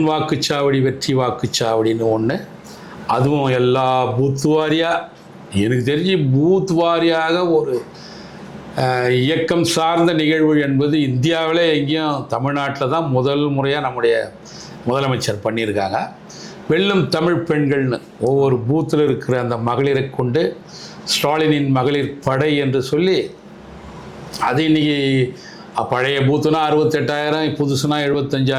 வாக்குச்சாவடி வெற்றி வாக்குச்சாவடின்னு ஒன்று, அதுவும் எல்லா பூத் வாரியாக, எனக்கு தெரிஞ்சு பூத் வாரியாக ஒரு இயக்கம் சார்ந்த நிகழ்வு என்பது இந்தியாவிலே எங்கேயும் தமிழ்நாட்டில் தான் முதல் முறையாக நம்முடைய முதலமைச்சர் பண்ணியிருக்காங்க. வெல்லும் தமிழ் பெண்கள்னு ஒவ்வொரு பூத்தில் இருக்கிற அந்த மகளிரை கொண்டு ஸ்டாலினின் மகளிர் படை என்று சொல்லி, அது இன்றைக்கி பழைய பூத்துனா 68,000, புதுசுனா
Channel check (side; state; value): both; identical; correlation 1.00